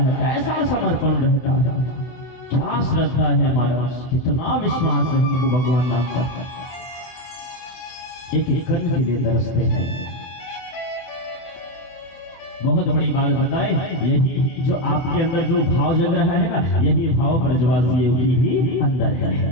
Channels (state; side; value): late; right; 24 ms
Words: कैसा समर्पण रहता है, क्या श्रद्धा है महाराज, कितना विश्वास है हमको भगवान नाम पर। एक कण के लिए तरसते हैं। बहुत बड़ी बात बताएं, यही जो आपके अंदर जो भाव जग रहा है ना, यही भाव ब्रजवासियों की भी अंदर है,